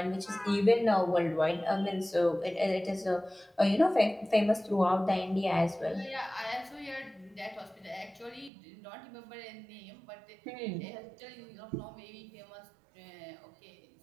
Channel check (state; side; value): drops out; left; at 8.5 s